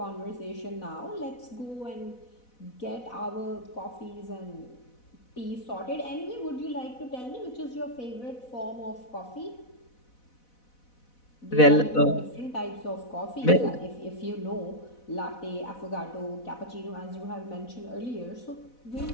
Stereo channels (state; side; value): late; right; 4.1 ms